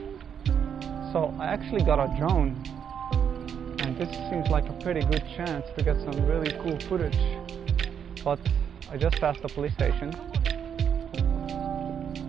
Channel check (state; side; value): quieter; left; 8.0 dB